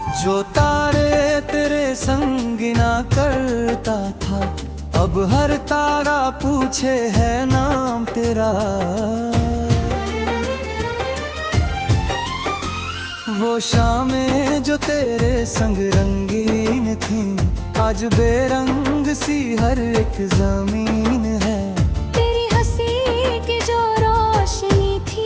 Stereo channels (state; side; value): identical; both; correlation 1.00